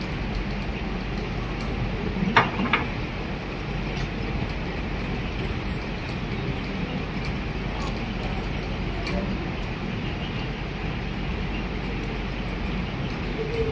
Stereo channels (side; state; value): both; identical; correlation 1.00